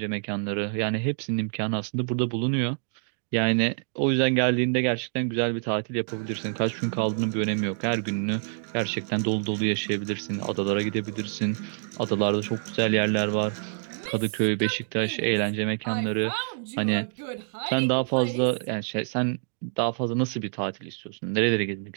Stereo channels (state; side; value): silent; left; digital silence